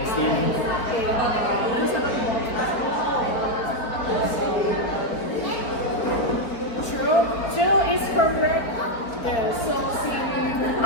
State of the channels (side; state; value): right; late; 4.4 ms